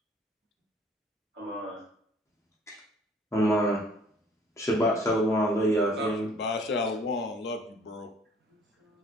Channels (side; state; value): both; normal; correlation 0.57